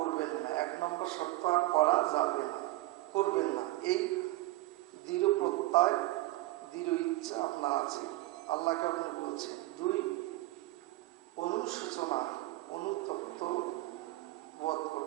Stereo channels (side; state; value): left; quieter; 17.9 dB